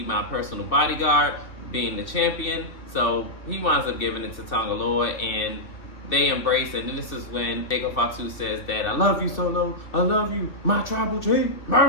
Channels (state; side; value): late; right; 2.7 ms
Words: my personal bodyguard being the champion. So he winds up giving it to Tonga Loa, and they embrace it. And this is when Jacob Fatu says that, I love you, Solo, I love you, my tribal chief.